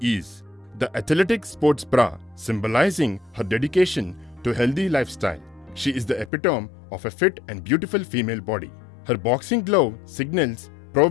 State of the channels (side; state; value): right; drops out; at 6.3 s